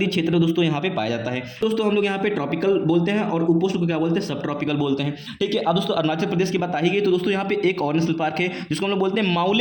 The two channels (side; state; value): both; identical; correlation 1.00